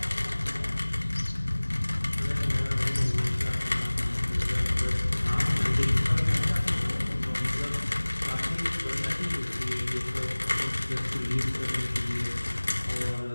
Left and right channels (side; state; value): both; inverted; correlation -1.00